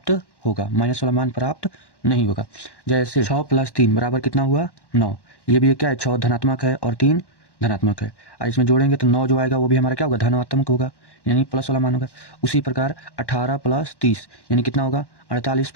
होगा, माइनस वाला मान प्राप्त नहीं होगा। जैसे 6 + 3 बराबर कितना हुआ? 9। ये भी क्या है? 6 धनात्मक है और 3 धनात्मक है, और इसमें जोड़ेंगे तो 9 जो आएगा वो भी हमारा क्या होगा? धनात्मक होगा, यानी प्लस वाला मान होगा। उसी प्रकार 18 + 30 यानी कितना होगा? 48,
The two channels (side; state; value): right; late; 1.1 ms